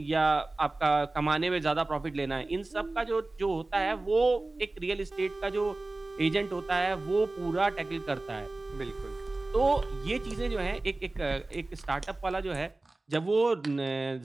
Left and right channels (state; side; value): quieter; left; 3.0 dB